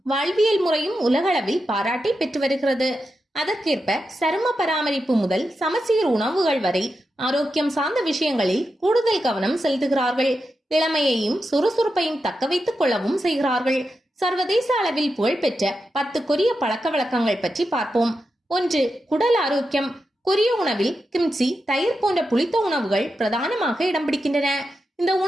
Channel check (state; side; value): normal; both; correlation 0.88